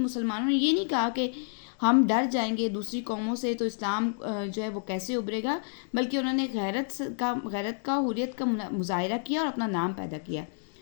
نے یہ نہیں کہا کہ ہم ڈر جائیں گے دوسری قوموں سے تو اسلام جو ہے وہ کیسے ابھرے گا، بلکہ انہوں نے غیرت کا حریت کا مظاہرہ کیا اور اپنا نام پیدا کیا۔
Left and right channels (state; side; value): silent; right; digital silence